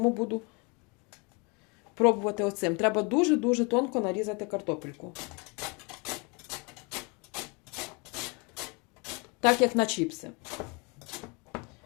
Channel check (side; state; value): right; quieter; 31.2 dB